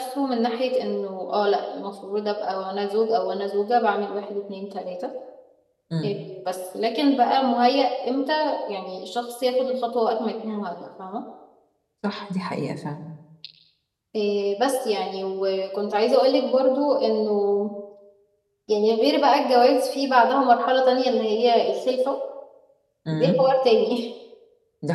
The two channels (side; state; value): both; identical; correlation 1.00